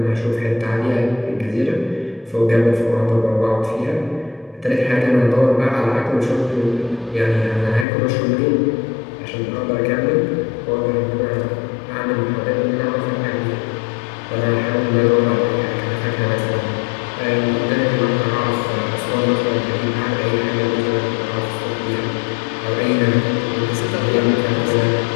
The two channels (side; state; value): right; drops out; at 7.9 s